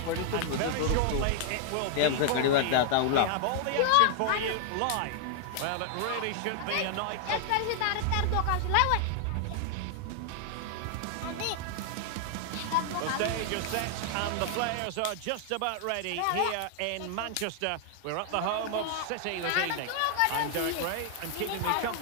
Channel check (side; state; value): both; different; correlation 0.00